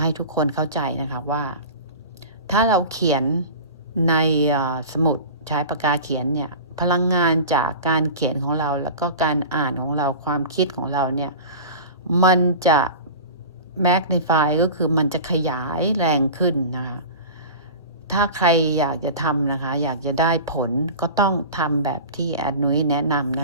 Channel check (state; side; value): inverted; both; correlation -0.33